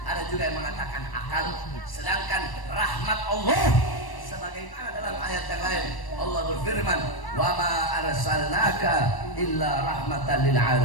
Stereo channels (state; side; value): late; right; 1.1 ms